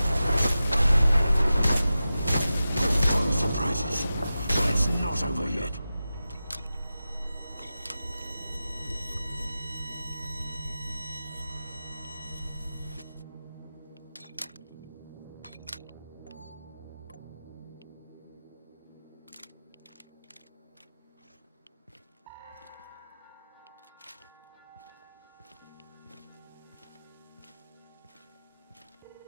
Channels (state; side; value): inverted; both; correlation -0.93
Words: Fun surprises. But it's not over yet.